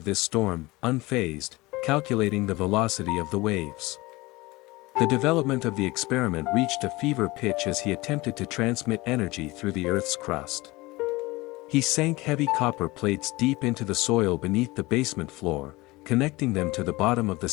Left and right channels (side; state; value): right; quieter; 21.5 dB